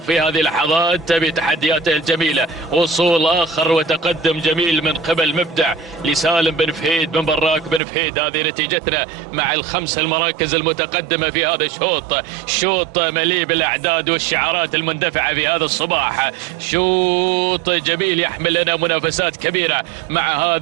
في هذه اللحظات بتحدياته الجميلة. وصول آخر وتقدم جميل من قبل مبدع لسالم بن فهيد بن براك بن فهيد. هذه نتيجتنا مع الخمس المراكز المتقدمة في هذا الشوط. شوط مليء بالأعداد والشعارات المندفعة في هذا الصباح. شوط جميل يحمل لنا منافسات كبيرة مع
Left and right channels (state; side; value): drops out; left; at 7.8 s